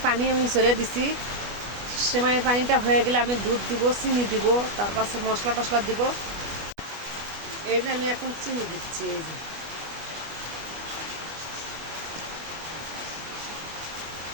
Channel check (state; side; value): late; left; 25 ms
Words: পানি আমি ছেড়ে দিছি। সেমাইয়ের পানিটা হয়ে গেলে আমি দুধ দিব, চিনি দিব, তার পাশে মশলা টশলা দিব। এই যে আমি এখন চিনি দিচ্ছি।